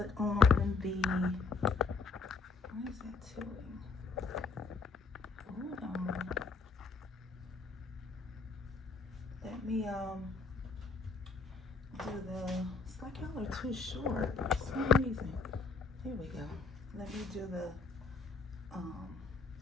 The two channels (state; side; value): quieter; right; 4.6 dB